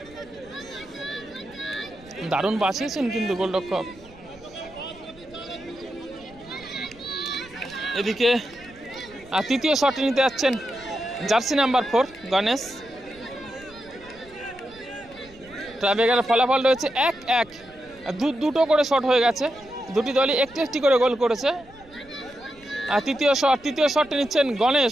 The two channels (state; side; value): noise; right; rumble, 24 dB below the sound